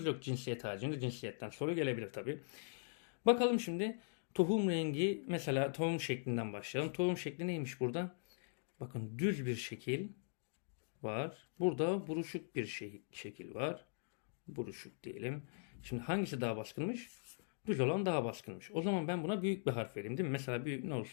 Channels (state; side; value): silent; right; digital silence